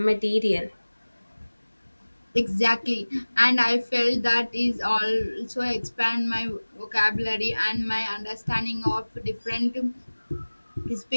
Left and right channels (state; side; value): inverted; both; correlation -1.00